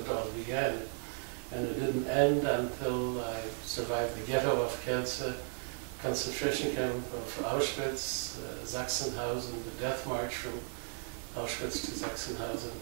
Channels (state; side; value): silent; left; 54 dB below the other